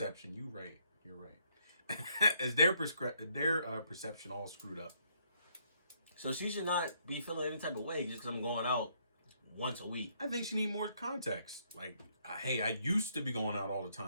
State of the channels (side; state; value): both; inverted; correlation -0.70